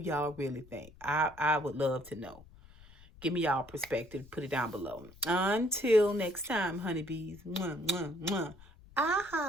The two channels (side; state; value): left; noise; rumble, 22 dB below the sound